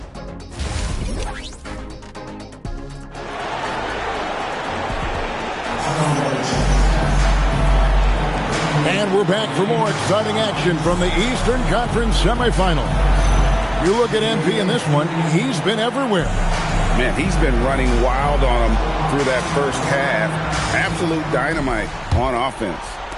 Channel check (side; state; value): both; identical; correlation 1.00